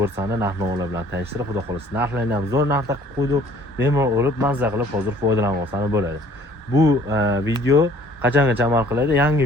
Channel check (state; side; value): normal; both; correlation 0.56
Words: narx-navolar bilan tanishtirib, xudo xohlasa narxlarni ham zo'r narxda qilib qo'ydik. Bemalol olib, mazza qilib hozir foydalanib olsangiz bo'ladi. Bu video qachongacha amal qiladi? Yangi